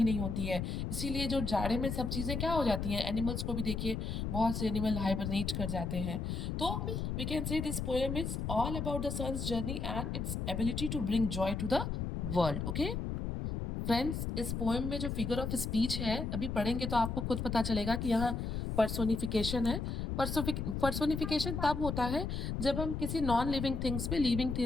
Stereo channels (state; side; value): noise; left; rumble, 2 dB below the sound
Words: नहीं होती है। इसीलिए जो जाड़े में सब चीजें क्या हो जाती हैं, एनिमल्स को भी देखिए, बहुत से एनिमल हाइबरनेट कर जाते हैं। तो we can say this poem is all about the sun's journey and its ability to bring joy to the world. Okay friends, इस पोएम में जो फिगर ऑफ स्पीच है, अभी पढ़ेंगे तो आपको खुद पता चलेगा कि यहाँ पर्सोनिफिकेशन है। पर्सोनिफिकेशन तब होता है जब हम किसी नॉन लिविंग थिंग्स पे लिविंग